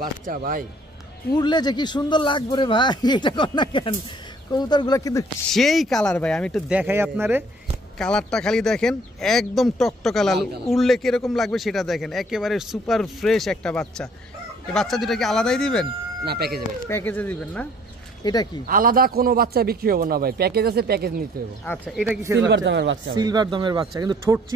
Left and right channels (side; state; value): both; normal; correlation 0.59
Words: বাচ্চা ভাই, উড়লে যে কি সুন্দর লাগবে রে ভাই, এটা কর না কেন? কবুতরগুলো কিন্তু সেই কালার ভাই, আমি একটু দেখাই আপনারে। কালারটা খালি দেখেন, একদম টকটকা লাল। উড়লে কিরকম লাগবে সেটা দেখেন, একেবারে সুপার ফ্রেশ একটা বাচ্চা। এই বাচ্চা দুটো কি আলাদাই দিবেন না? প্যাকেজে দিবেন না? এটা কি আলাদা কোনো বাচ্চা বিক্রি হবে না ভাই, প্যাকেজ আছে, প্যাকেজ নিতে হবে। আচ্ছা, এটা কি সিলভার দামের বাচ্চা? সিলভার দামের বাচ্চা, কিন্তু ঠোঁট